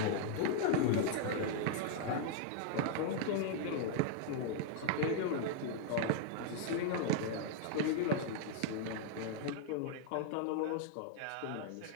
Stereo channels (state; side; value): different; both; correlation 0.00